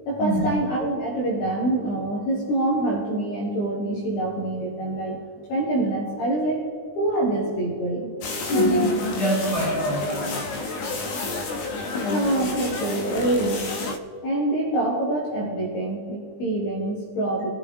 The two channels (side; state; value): right; late; 20 ms